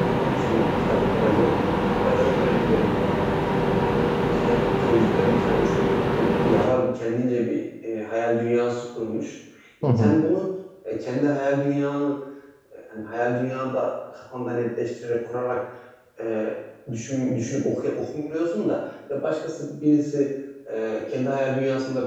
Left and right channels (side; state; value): both; identical; correlation 1.00